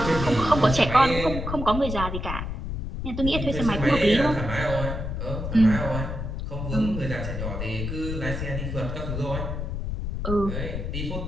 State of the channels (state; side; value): noise; left; rumble, 4 dB below the sound